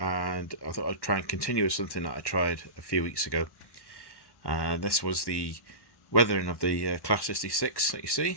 thought I'd try and continue with something that I tried a few weeks ago. This was the weathering of the Class 66 that you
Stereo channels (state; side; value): late; right; 1.1 ms